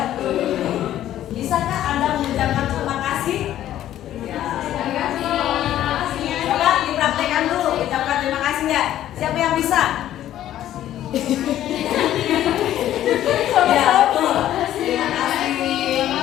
Bisakah Anda mengucapkan terima kasih? Ya. Coba dipraktekkan dulu, ucapkan terima kasih ya. Siapa yang bisa? Ya, betul. Terima kasih.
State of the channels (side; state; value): right; quieter; 12.4 dB